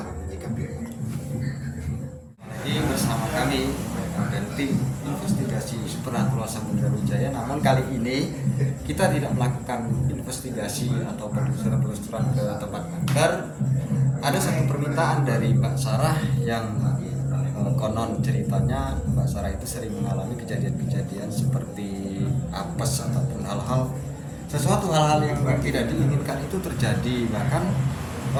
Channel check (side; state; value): both; identical; correlation 1.00